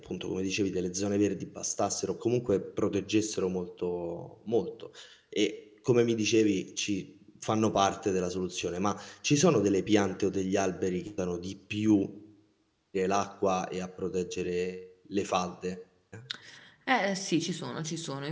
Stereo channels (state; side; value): identical; both; correlation 1.00